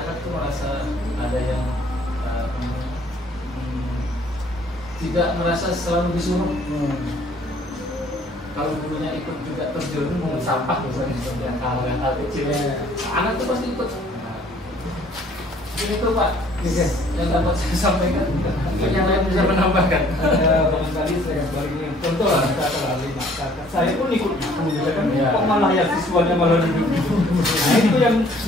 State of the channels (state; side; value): normal; both; correlation 0.58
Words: tuh merasa ada yang tidak merasa selalu disuruh. Kalau gurunya ikut juga terjun mengut sampah misalnya, seperti yang hal kecil, anak tuh pasti ikut. Ini tuh Pak, yang dapat saya sampaikan. Yang lain bisa menambahkan. Barangkali saya balik ini contoh lah, saya pun ikut kan, kok malah ya siswanya malah duduk. Nah itu yang